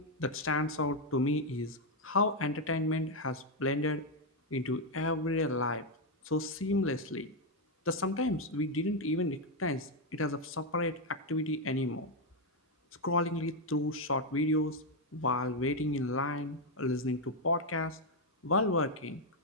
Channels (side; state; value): both; normal; correlation 0.03